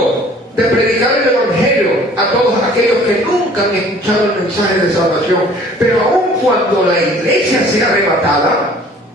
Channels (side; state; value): both; normal; correlation 0.52